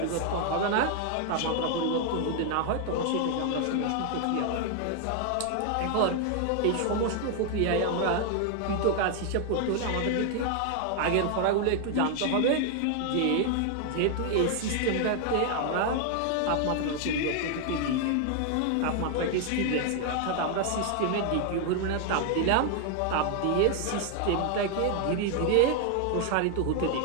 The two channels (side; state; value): both; different; correlation 0.00